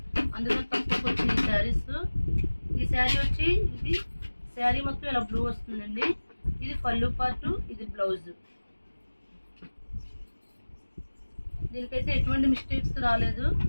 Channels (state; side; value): inverted; both; correlation -1.00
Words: అందుకని తక్కువకి వచ్చిన ఈ సారీస్। ఈ సారీ వచ్చి ఇది సారీ మొత్తం ఇలా బ్లూ వస్తుందండి। ఇది పళ్ళు పార్ట్, ఇది బ్లౌజ్। దీనికైతే ఎటువంటి మిస్టేక్స్ రాలేదు,